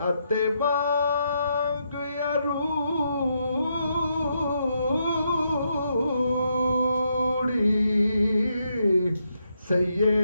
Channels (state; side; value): inverted; both; correlation -0.79